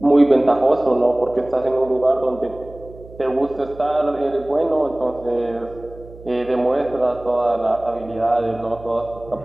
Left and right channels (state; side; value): noise; right; hum, 19 dB below the sound